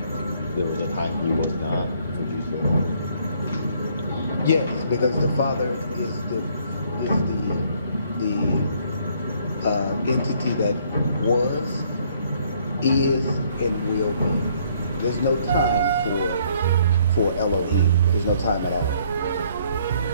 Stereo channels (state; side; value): inverted; both; correlation -0.64